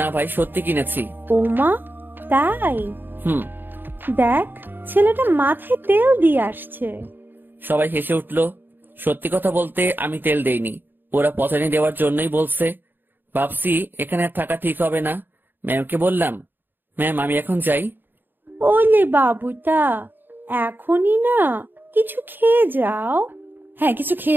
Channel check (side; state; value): left; late; 0.094 ms